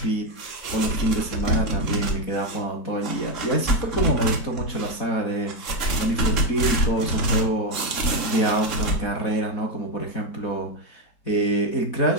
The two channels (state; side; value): late; right; 4.2 ms